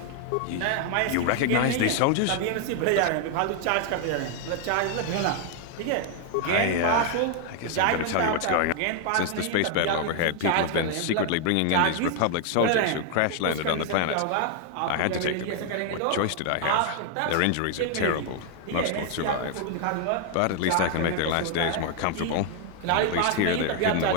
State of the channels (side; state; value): both; different; correlation 0.00